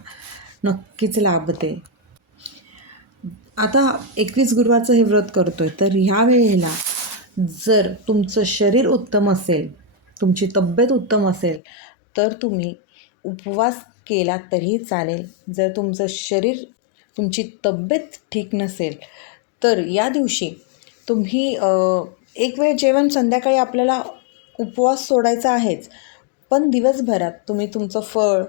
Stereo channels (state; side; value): drops out; right; at 11.6 s